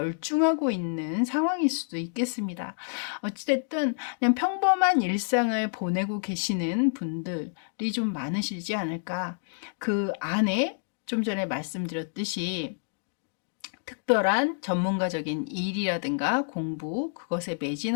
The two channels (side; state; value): right; silent; digital silence